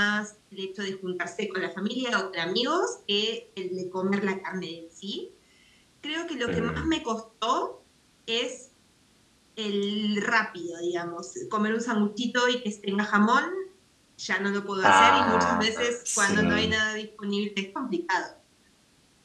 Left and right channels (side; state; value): both; identical; correlation 1.00